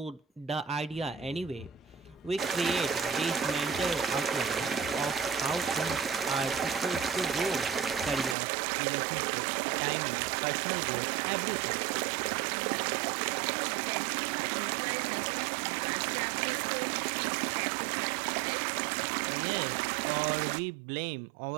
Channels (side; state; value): left; drops out; at 8.3 s